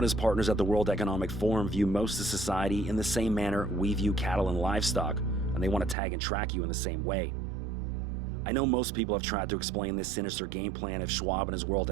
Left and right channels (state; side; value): drops out; left; at 6.0 s